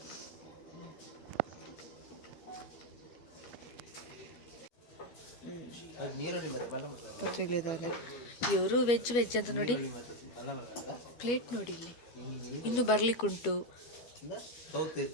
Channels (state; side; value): late; right; 12 ms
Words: ಪತ್ರಿಕೆದಾರೆ ಇವರು ವೆಜ್ ಅಂತ ನೋಡಿ ಪ್ಲೇಟ್ ನೋಡಿ ಇಲ್ಲಿ ಇನ್ನು ಬರ್ಲಿಕ್ಕುಂಟು.